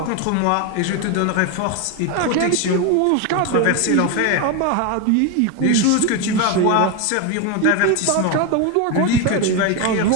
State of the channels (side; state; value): both; different; correlation 0.02